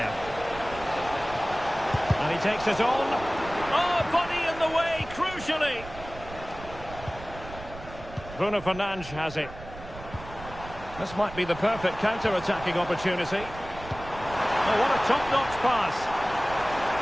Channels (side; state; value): right; noise; rumble, 14 dB below the sound